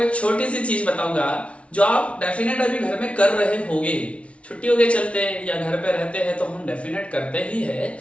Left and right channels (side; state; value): right; late; 0.062 ms